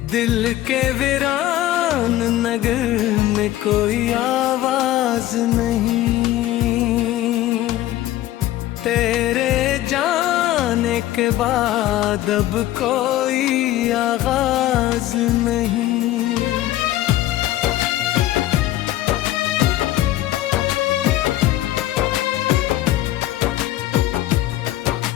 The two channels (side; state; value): right; quieter; 14.5 dB